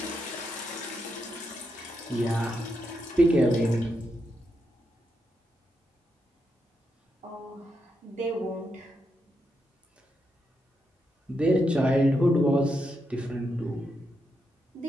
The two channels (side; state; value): both; normal; correlation 0.83